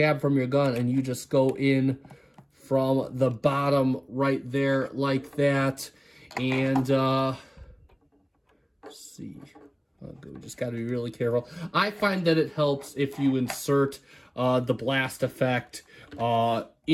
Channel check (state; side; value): identical; both; correlation 1.00